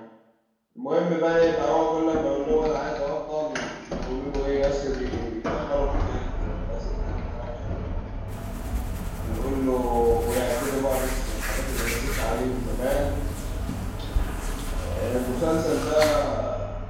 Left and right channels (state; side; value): identical; both; correlation 1.00